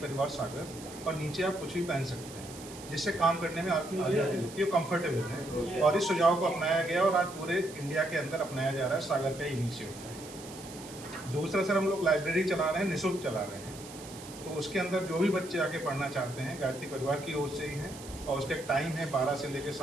सागर, और नीचे आप कुछ भी पहन सकते हैं, जिससे काम करने में आपकी आज़ादी होती है, कंफर्टेबल है। और इस सुझाव को अपनाया गया और आज पूरे इंडिया के अंदर अपनाया जा रहा है, सागर का इनिशिएटिव है। दूसरा सर, हम लोग लाइब्रेरी चला रहे हैं, निःशुल्क चला रहे हैं, तो उसके अंदर जो भी बच्चे आके पढ़ना चाहते हैं गायत्री परिवार की ओर से ही है और उसका टाइम है 12 से लेकर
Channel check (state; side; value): noise; right; hiss, 16 dB below the sound